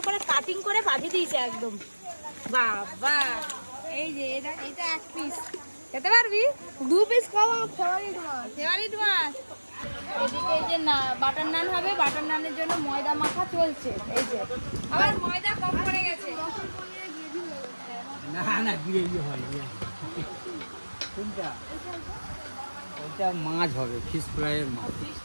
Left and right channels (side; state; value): both; inverted; correlation -1.00